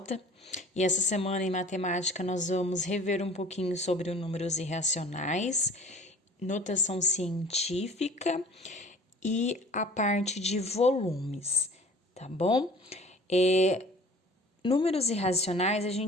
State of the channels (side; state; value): both; normal; correlation 0.47